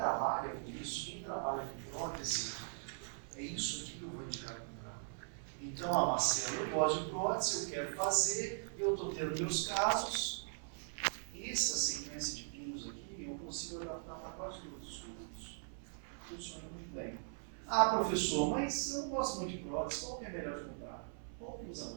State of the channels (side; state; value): left; silent; 51 dB below the other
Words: com isso, quem trabalha com prótese, é isso aqui que eu vou indicar comprar. Então, Marcelo, eu gosto de prótese, eu quero fazer, eu estou tendo meus casos. Essa sequência de pinos aqui, eu consigo adaptar para quase todos os cursos. Funciona muito bem. Ah, professor, mas eu não gosto muito de prótese, qual que é melhor de comprar? Qual que usa